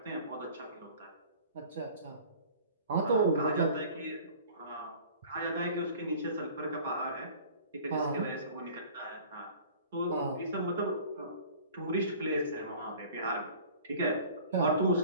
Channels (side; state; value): both; inverted; correlation -0.46